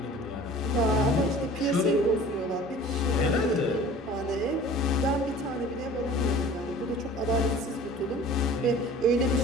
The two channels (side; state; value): both; normal; correlation 0.45